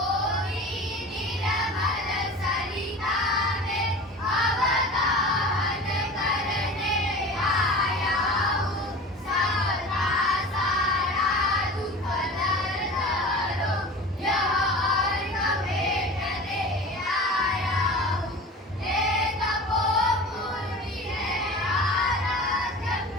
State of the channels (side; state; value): both; normal; correlation 0.36